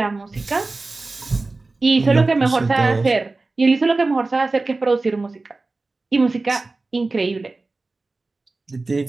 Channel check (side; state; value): left; quieter; 3.4 dB